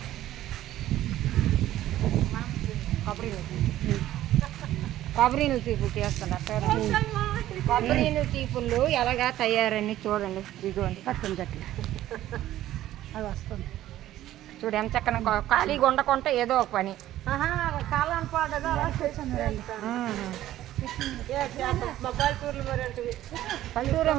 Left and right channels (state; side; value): quieter; left; 13.7 dB